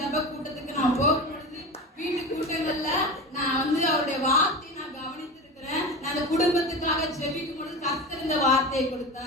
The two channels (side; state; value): both; normal; correlation 0.28